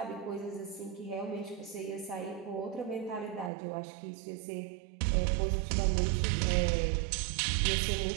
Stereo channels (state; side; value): drops out; left; at 3.5 s